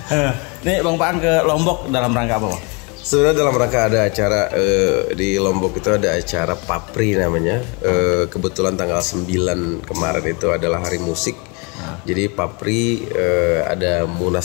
Nih Bang Paang ke Lombok dalam rangka apa Bang? Sebenarnya dalam rangka ada acara di Lombok itu ada acara Papri namanya. Kebetulan tanggal 9 kemarin itu adalah hari musik. Jadi Papri ada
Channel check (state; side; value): quieter; right; 31.2 dB